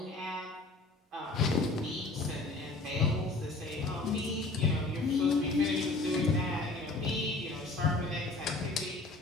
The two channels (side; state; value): right; quieter; 3.2 dB